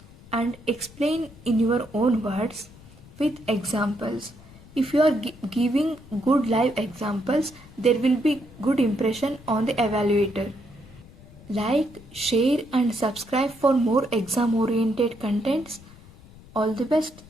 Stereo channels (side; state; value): left; noise; rumble, 21 dB below the sound